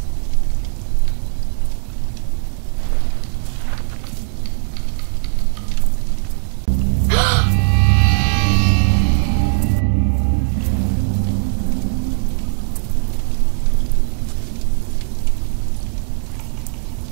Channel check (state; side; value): silent; left; digital silence